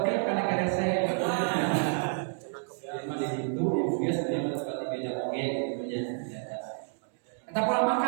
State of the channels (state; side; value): silent; left; digital silence